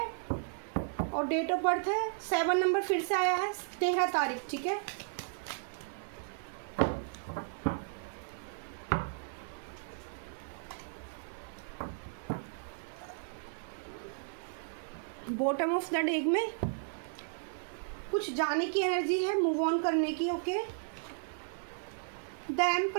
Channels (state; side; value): silent; left; 55 dB below the other